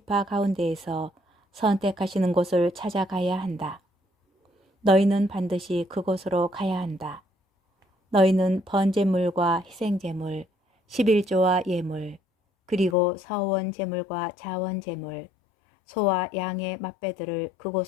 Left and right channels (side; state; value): right; drops out; at 13.0 s